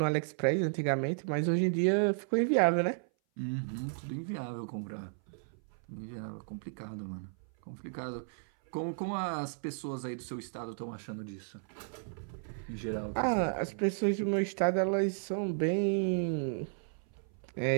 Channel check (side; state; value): left; silent; 55 dB below the other